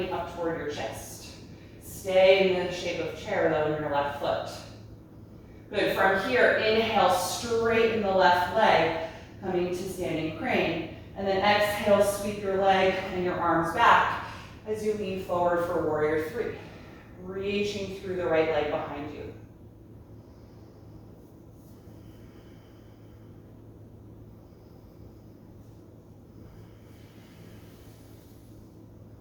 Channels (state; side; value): identical; both; correlation 1.00